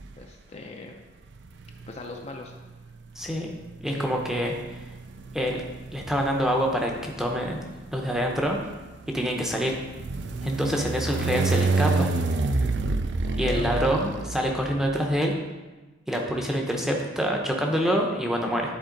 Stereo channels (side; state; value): both; normal; correlation 0.70